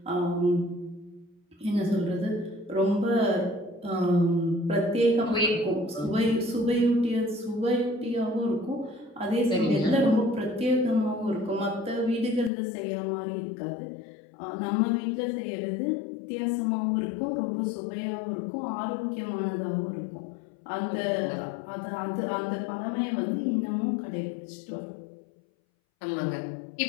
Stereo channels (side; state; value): right; drops out; at 12.5 s